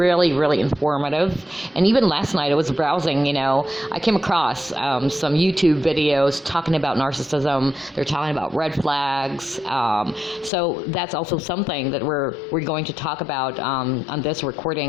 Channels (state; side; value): drops out; right; at 10.5 s